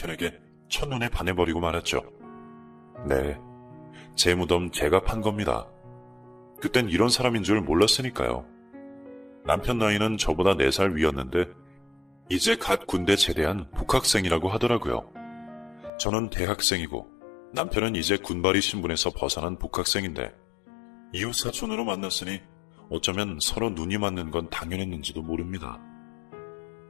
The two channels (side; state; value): right; drops out; at 15.9 s